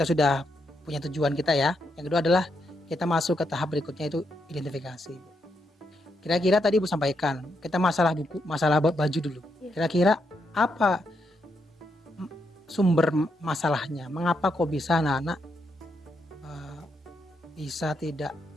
sudah punya tujuan kita ya. Yang kedua adalah kita masuk ke tahap berikutnya, itu identifikasi. Kira-kira tadi Ibu sampaikan kita masalah baju dulu. Kira-kira apa sumber masalahnya? Mengapa kok bisa anak-anak bisa tidak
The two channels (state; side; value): normal; both; correlation 0.80